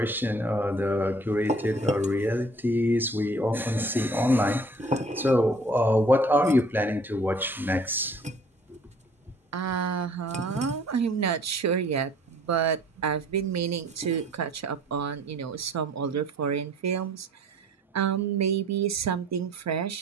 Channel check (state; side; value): normal; both; correlation 0.54